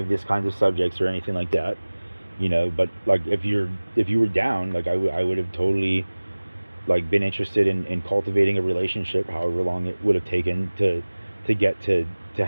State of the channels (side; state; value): both; inverted; correlation -1.00